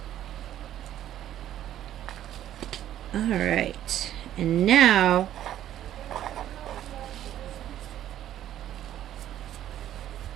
Alright, and now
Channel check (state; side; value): quieter; left; 11.8 dB